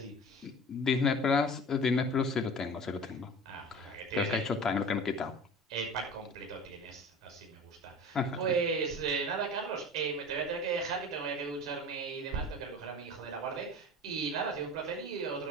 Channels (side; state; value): both; normal; correlation 0.38